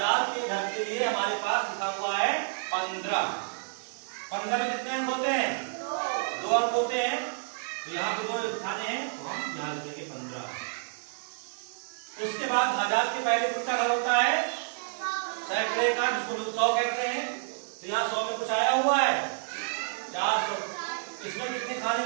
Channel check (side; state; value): left; silent; 58 dB below the other